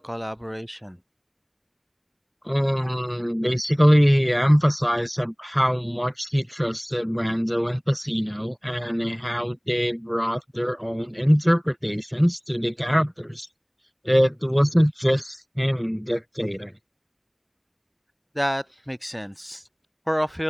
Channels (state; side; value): identical; both; correlation 1.00